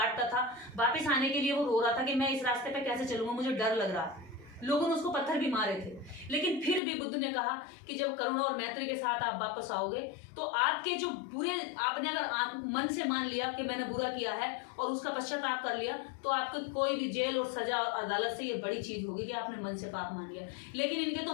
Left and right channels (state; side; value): drops out; right; at 6.8 s